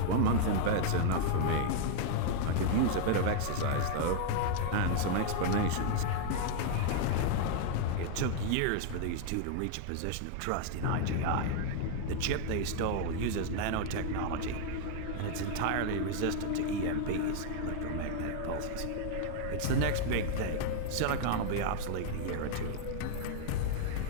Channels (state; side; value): different; both; correlation 0.00